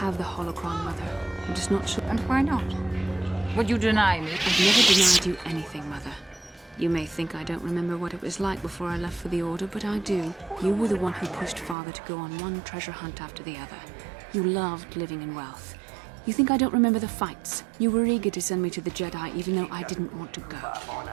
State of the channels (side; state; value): left; drops out; at 11.8 s